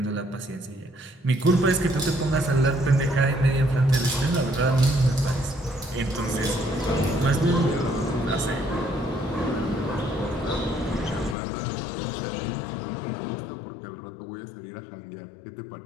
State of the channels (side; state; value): right; drops out; at 11.4 s